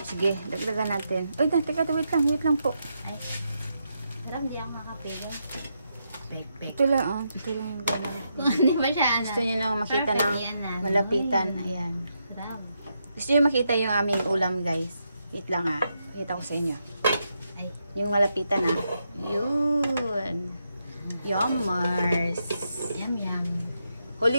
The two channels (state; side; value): inverted; both; correlation -0.82